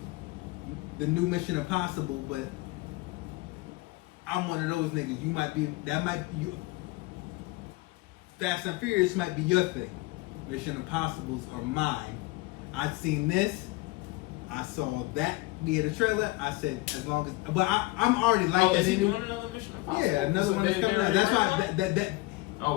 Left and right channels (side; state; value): right; quieter; 21.0 dB